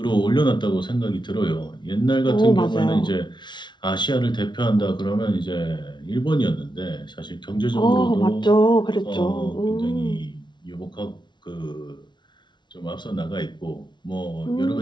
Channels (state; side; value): late; right; 0.22 ms